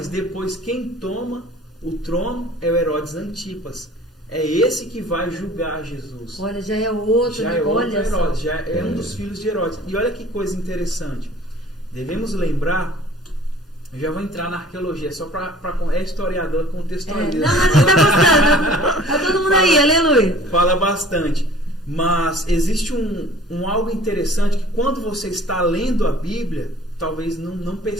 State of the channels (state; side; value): normal; both; correlation 0.48